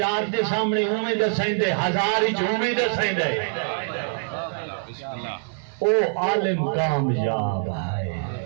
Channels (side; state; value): left; silent; digital silence